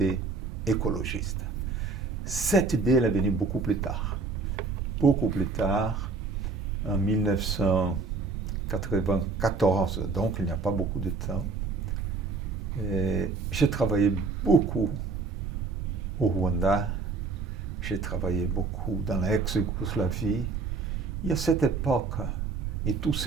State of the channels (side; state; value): left; quieter; 4.2 dB